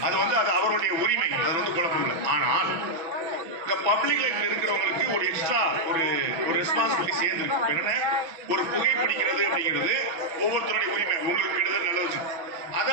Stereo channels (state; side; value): late; left; 6.1 ms